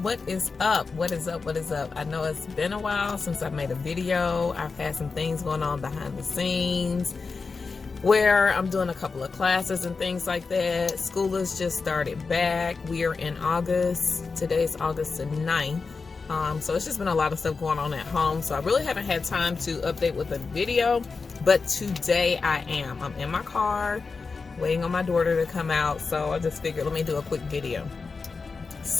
is up? What is up? What is up? I know it's been a while since I've made a video. I've had some things going on behind the scenes where I'm doing a couple of classes and things like that. School has just started back. We are in August. Today's August the 9th. So it's just been a lot of stuff going on at home. So I really haven't had time to update with a video, but today I am. I'm in my car waiting on my daughter to come out. So I just figured, let me do a quick video.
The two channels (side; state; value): right; quieter; 4.5 dB